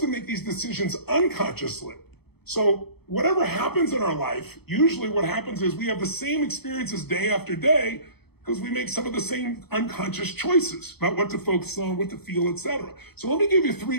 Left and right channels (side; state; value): right; late; 0.97 ms